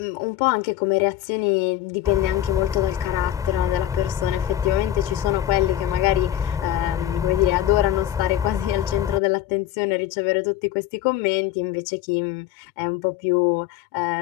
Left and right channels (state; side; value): quieter; right; 12.5 dB